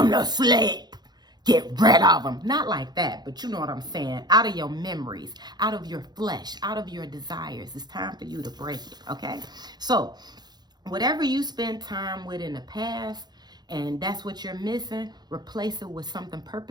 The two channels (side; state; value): left; late; 0.20 ms